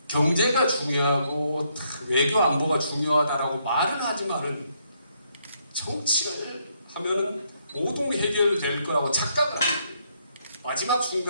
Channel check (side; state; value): both; inverted; correlation -0.74